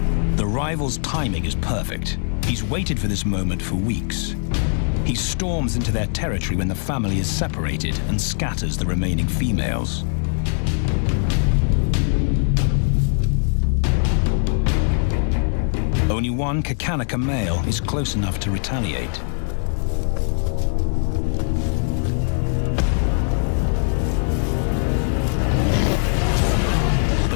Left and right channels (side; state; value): right; silent; 59 dB below the other